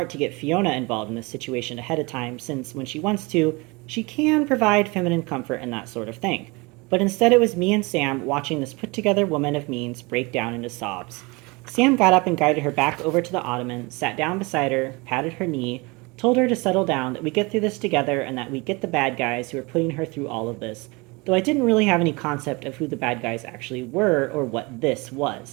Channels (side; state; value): left; quieter; 26.1 dB